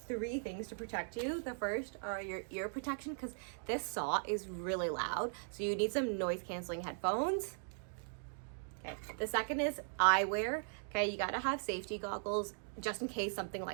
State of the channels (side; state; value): left; silent; digital silence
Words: things to protect you. The first are your ear protection, because this saw is really loud, so you need some noise canceling headphones. Okay, the second is eyewear. Okay, you gotta have safety goggles just in case something